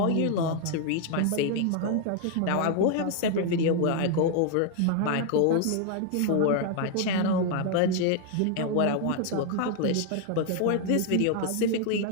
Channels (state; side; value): different; both; correlation 0.00